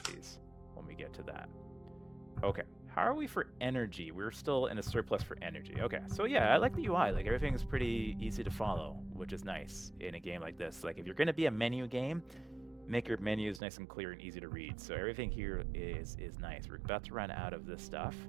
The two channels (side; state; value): left; drops out; at 13.6 s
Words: when we get to that. Okay, how are we for energy? We're still in a surplus for energy. Okay, so yeah, I like the UI. Like, everything is pretty easy to follow, which is nice in a game like this. Like, if you're going to be a menu game, make your menus nice and clear and easy to read. So everything here is nice. We're about to run out of this stuff.